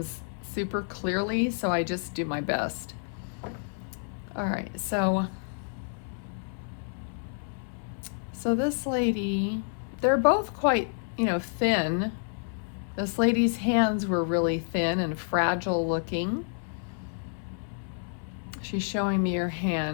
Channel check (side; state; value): right; silent; 58 dB below the other